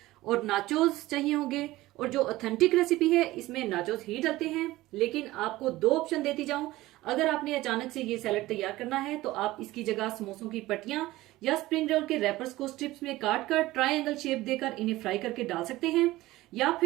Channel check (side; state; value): left; quieter; 17.7 dB